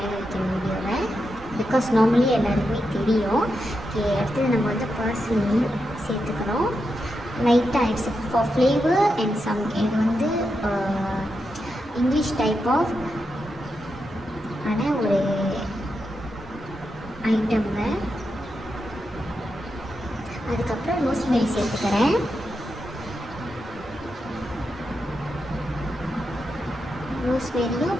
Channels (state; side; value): normal; both; correlation 0.86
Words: வைக்கிற வீடியோவில், பிகாஸ் நார்மலி எல்லாருக்குமே தெரியும். ஓகே, அடுத்தது நம்ம வந்து பார்ஸ்லி சேர்த்துக்கிறோம் லைட்டாக. It's for flavour and some. இது வந்து இங்கிலீஷ் டைப் ஆஃப் ஆனால் ஒரு ஐட்டம்ங்க. அதுக்கப்புறம் ரோஸ்மெரி சேர்த்துக்கிறேன். ரோஸ்மெரியும்